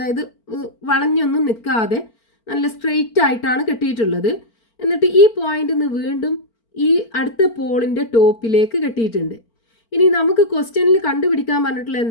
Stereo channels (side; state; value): right; late; 4.4 ms